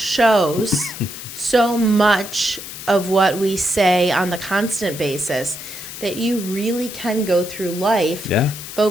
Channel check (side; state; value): left; noise; hiss, 11 dB below the sound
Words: so much of what we say on the constant basis, that you really can go through life Yeah.